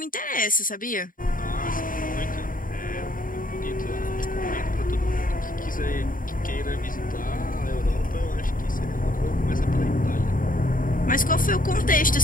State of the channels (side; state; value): right; late; 0.40 ms